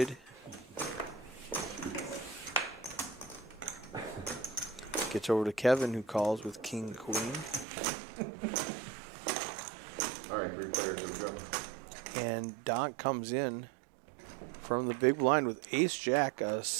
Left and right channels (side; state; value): left; drops out; at 7.7 s